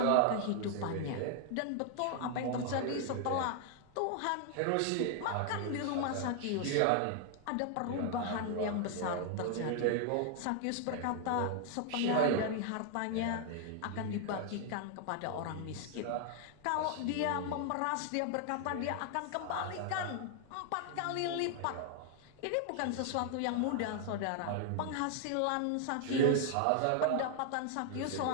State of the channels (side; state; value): both; different; correlation 0.00